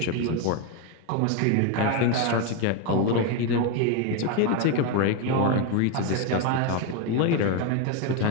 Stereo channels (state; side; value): different; both; correlation 0.02